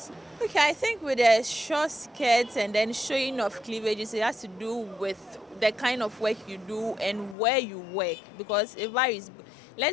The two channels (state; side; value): drops out; right; at 7.4 s